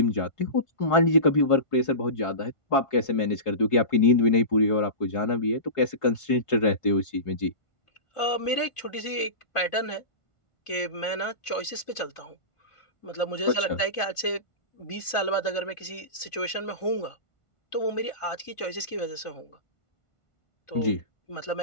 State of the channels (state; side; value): late; right; 1.5 ms